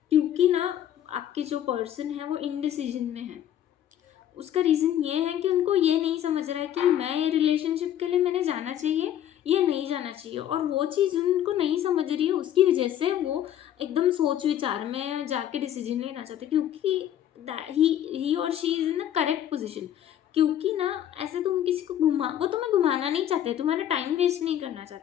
क्योंकि ना आपके जो पर्सन है वो इनडिसीजन में है. उसका रीज़न ये है कि उनको ये नहीं समझ रहा है कि मैं ये रिलेशनशिप के लिए मैंने जाना जाना चाहिए या नहीं जाना चाहिए, और वो चीज़ उनको नहीं समझ रही है, उसकी वजह से वो एकदम सोच विचार में जाके डिसीजन लेना चाहते, क्योंकि ही और she is in the correct position. क्योंकि ना ऐसे तुम किसी को वो तुम्हें घुमाना नहीं चाहते, तुम्हारा टाइम वेस्ट नहीं करना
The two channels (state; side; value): quieter; right; 10.9 dB